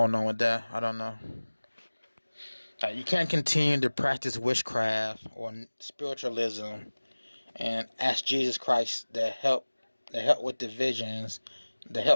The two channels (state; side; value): inverted; both; correlation -1.00